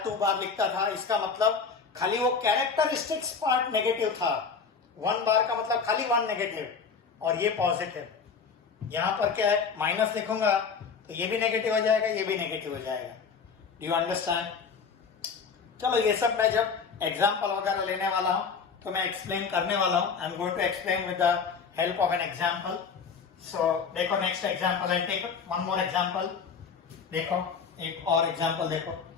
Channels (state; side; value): quieter; right; 5.7 dB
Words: 2 बार लिखता था, इसका मतलब खाली वो कैरेक्टरिस्टिक्स पार्ट नेगेटिव था। 1 बार का मतलब खाली 1 नेगेटिव और ये पॉजिटिव। यहां पर क्या है, माइनस लिखूंगा तो ये भी नेगेटिव हो जाएगा, ये भी नेगेटिव हो जाएगा। Do you understand? चलो ये सब मैं जब एग्जाम्पल वगैरह लेने वाला हूं तो मैं एक्सप्लेन करने वाला हूं। I am going to explain with the help of an example. So देखो next example, I take one more example. देखो एक और एग्जाम्पल देखो,